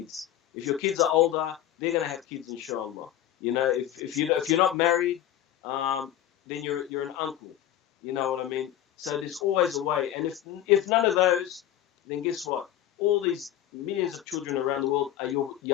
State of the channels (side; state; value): right; quieter; 11.9 dB